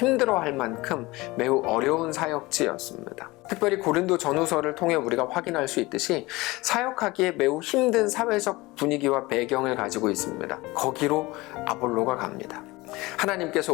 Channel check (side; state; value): right; quieter; 21.4 dB